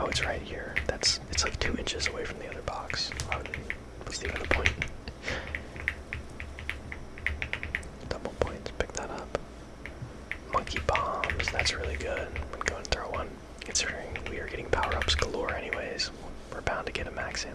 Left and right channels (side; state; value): both; identical; correlation 1.00